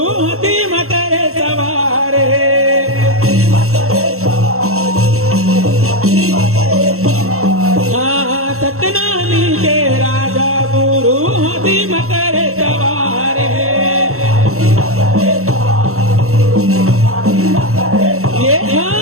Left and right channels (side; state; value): left; late; 0.63 ms